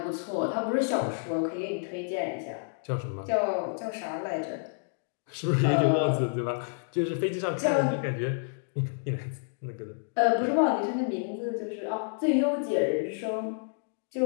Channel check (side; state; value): right; silent; digital silence